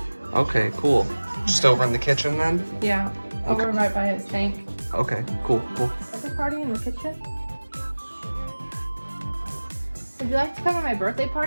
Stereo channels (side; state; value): both; inverted; correlation -1.00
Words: Okay, cool. Just over in the kitchen then? Yeah. Okay. Over right by his tank. Okay, cool. Birthday party in the kitchen? Would you like to come to my birthday